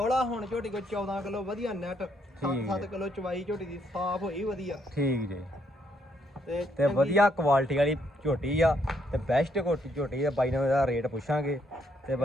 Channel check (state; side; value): normal; both; correlation 0.72